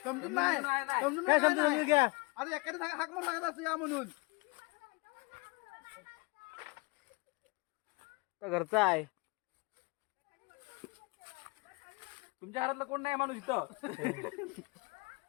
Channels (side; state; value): right; quieter; 27.7 dB